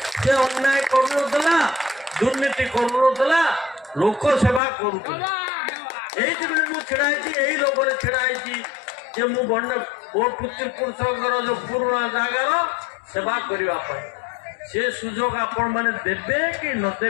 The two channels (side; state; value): right; drops out; at 4.6 s